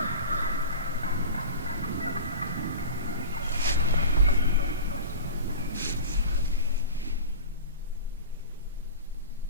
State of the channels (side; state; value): both; inverted; correlation -0.32